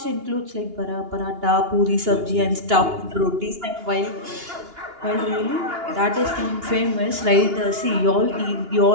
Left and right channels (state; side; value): late; left; 2.8 ms